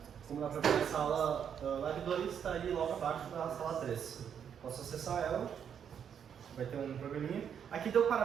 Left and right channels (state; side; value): quieter; left; 8.1 dB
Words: como dá para ver a sala lab 2 está ali logo abaixo da sala 3. Posso acessar ela, vai ter um programinha. Aqui deu